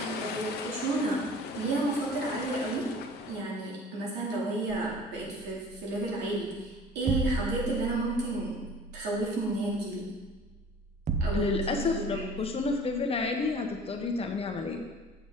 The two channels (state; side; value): normal; both; correlation 0.46